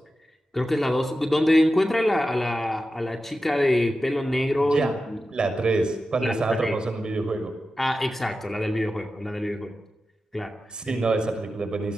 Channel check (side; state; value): both; normal; correlation 0.92